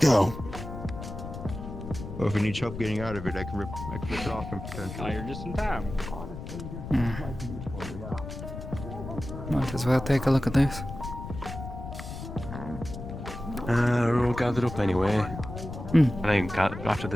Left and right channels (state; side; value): noise; left; rumble, 9 dB below the sound